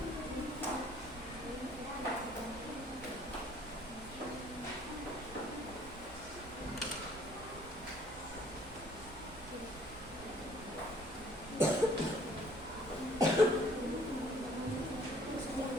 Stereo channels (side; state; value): right; noise; rumble, 18 dB below the sound